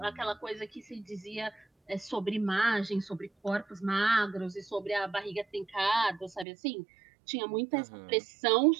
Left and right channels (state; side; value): drops out; left; at 6.5 s